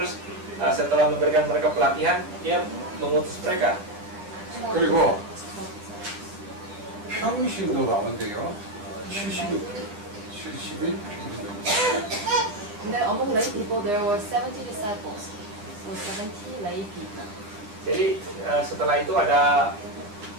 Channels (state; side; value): late; left; 9.8 ms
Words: setelah memberikan mereka pelatihan dia mengutus mereka. 그리고 평신도 가운데요, 70일 And then among lay people, there were 70 disciples, so 70 lay people. Jadi setelah itu ada